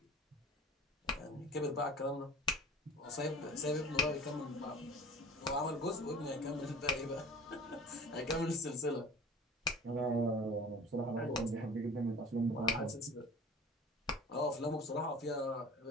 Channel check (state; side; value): normal; both; correlation 0.41